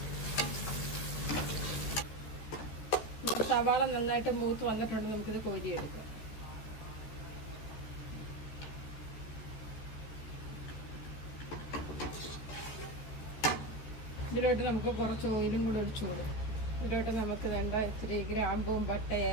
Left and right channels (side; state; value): right; late; 13 ms